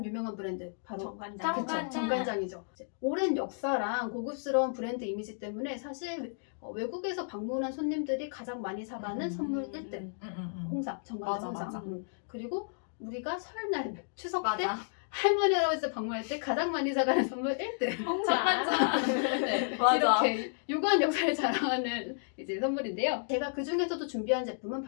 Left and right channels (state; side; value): silent; right; digital silence